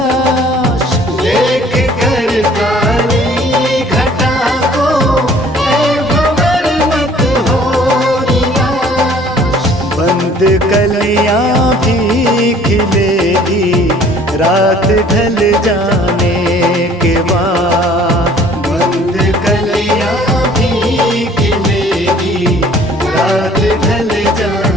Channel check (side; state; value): both; normal; correlation 0.54